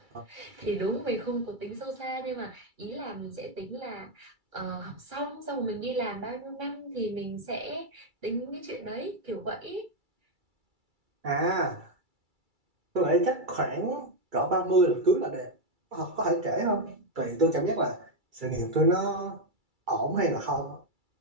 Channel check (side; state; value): left; late; 2.3 ms